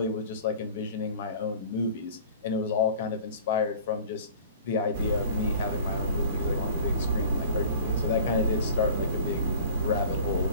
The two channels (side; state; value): both; inverted; correlation -0.44